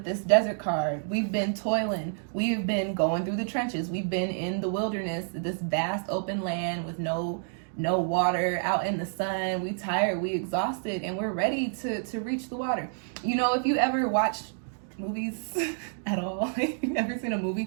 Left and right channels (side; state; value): left; silent; digital silence